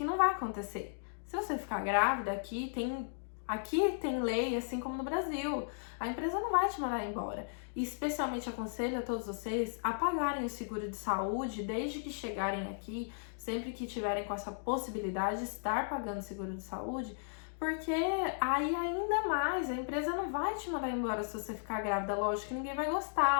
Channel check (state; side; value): silent; right; digital silence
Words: não vai acontecer. Se você ficar grávida, aqui tem lei, assim como no Brasil. A empresa não vai te mandar embora. E especialmente aconselho a todos vocês a pagarem o seguro de saúde desde que chegarem aqui, sempre que tiverem com essa possibilidade de estar pagando seguro de saúde, porque aí ainda mais, a empresa não vai te mandar embora se você ficar grávida. Lógico que ninguém vai